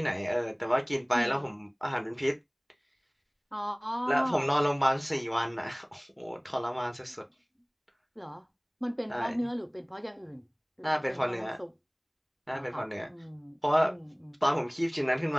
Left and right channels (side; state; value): both; identical; correlation 1.00